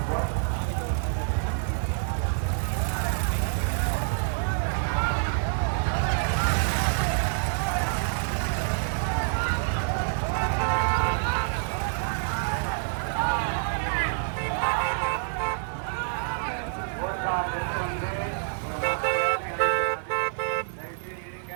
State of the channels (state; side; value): silent; left; digital silence